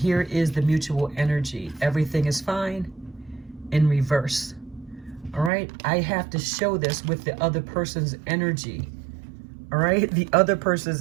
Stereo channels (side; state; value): left; drops out; at 5.5 s